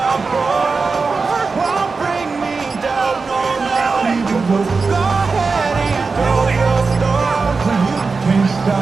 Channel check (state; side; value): quieter; left; 4.4 dB